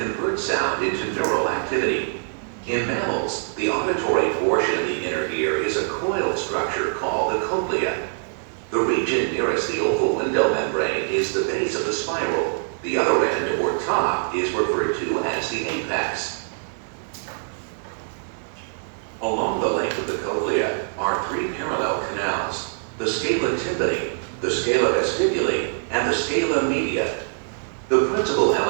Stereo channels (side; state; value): left; silent; digital silence